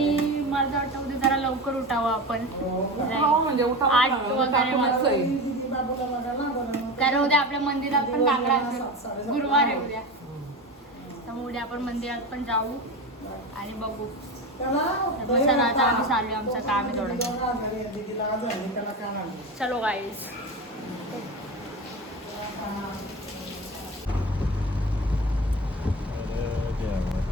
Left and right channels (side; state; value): both; normal; correlation 0.26